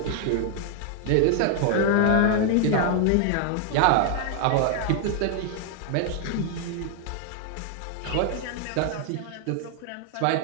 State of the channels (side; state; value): both; different; correlation 0.00